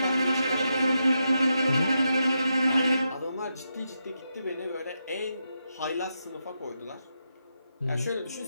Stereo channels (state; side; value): inverted; both; correlation -0.84